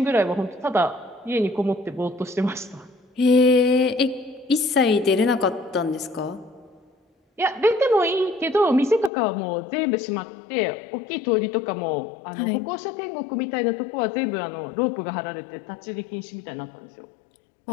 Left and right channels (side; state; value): right; drops out; at 9.1 s